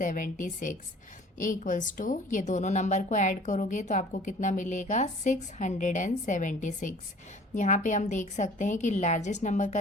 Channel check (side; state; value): both; normal; correlation 0.49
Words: इक्वल्स टू ये दोनों नंबर को ऐड करोगे तो आपको कितना मिलेगा 676। यहाँ पे हम देख सकते हैं कि लार्जेस्ट नंबर का